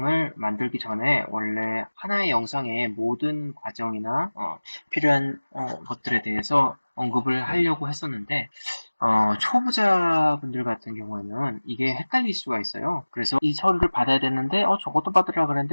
만들기 전에 원래 하나의 영상에 모든 과정이나 필요한 것들에 대해서 언급을 하려고 했었는데 초보자분들 같은 경우에는 이게 헷갈릴 수가 있어요. 그래서 이 서류를 받아야 되는데, 저것도 받으라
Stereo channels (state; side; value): inverted; both; correlation -1.00